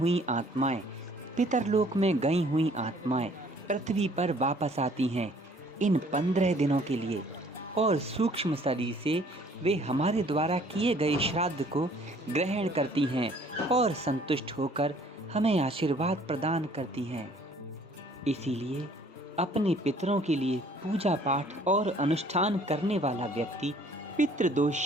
आत्माएं, पितरलोक में गई हुई आत्माएं पृथ्वी पर वापस आती हैं इन 15 दिनों के लिए, और सूक्ष्म शरीर से वे हमारे द्वारा किए गए श्राद्ध को ग्रहण करती हैं और संतुष्ट होकर हमें आशीर्वाद प्रदान करती हैं। इसीलिए अपने पितरों के लिए पूजा पाठ और अनुष्ठान करने वाला व्यक्ति पितृदोष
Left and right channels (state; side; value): normal; both; correlation 0.57